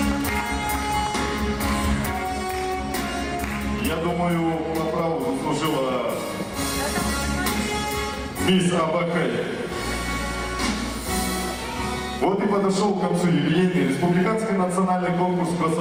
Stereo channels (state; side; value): identical; both; correlation 1.00